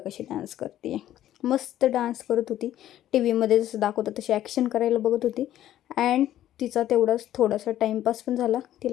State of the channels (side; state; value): right; quieter; 12.5 dB